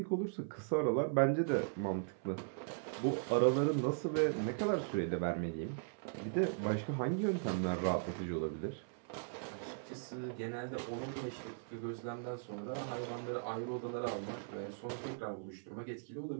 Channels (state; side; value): silent; left; 52 dB below the other